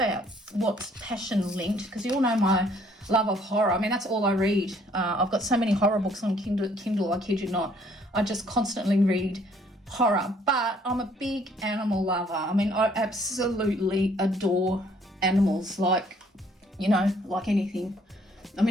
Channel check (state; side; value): normal; both; correlation 0.62